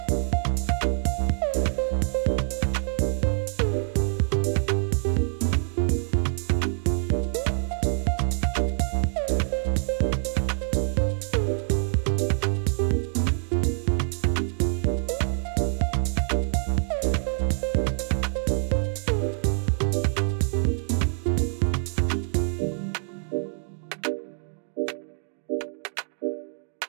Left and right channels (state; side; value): silent; left; digital silence